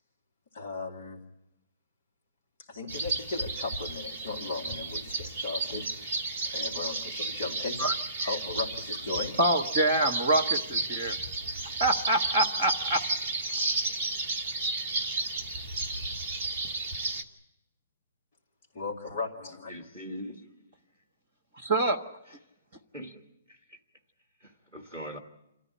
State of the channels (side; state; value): both; inverted; correlation -0.48